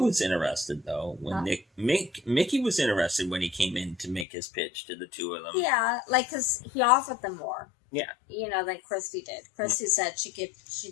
interested though when Mickey was interested when he came in to make his pitch to the two of them. Yeah, because he offered them more. Yeah. Than Christy did. Christy said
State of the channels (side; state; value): right; drops out; at 4.2 s